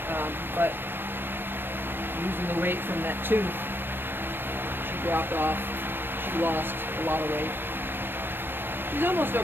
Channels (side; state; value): left; late; 0.097 ms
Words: But losing the weight from that tooth, she dropped off. She lost a lot of weight. She's almost